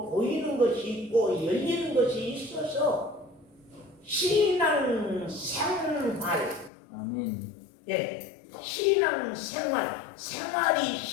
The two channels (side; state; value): right; drops out; at 6.7 s